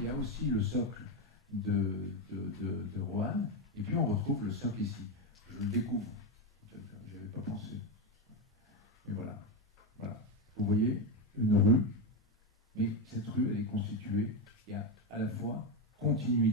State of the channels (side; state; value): both; normal; correlation 0.10